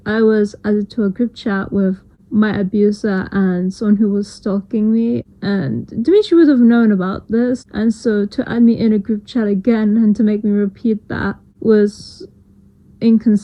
I was added to a group chat with my abuser and someone who was stalking me, and Dimitri would have known about this, and so to add me in a group chat again and to make me repeat that was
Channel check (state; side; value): identical; both; correlation 1.00